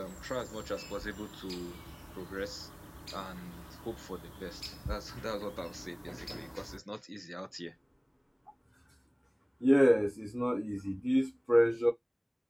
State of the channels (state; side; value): identical; both; correlation 1.00